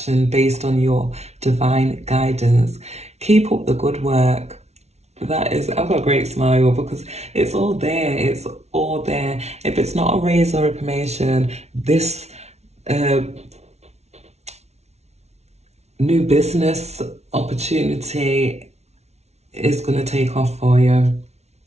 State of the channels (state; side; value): late; left; 0.31 ms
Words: based on your divine guidance. Keep up the good work. That is, I've got a great smile because it's all there. It's all there. If it's not a raise or a promotion, this new business opportunity is going to take off for you.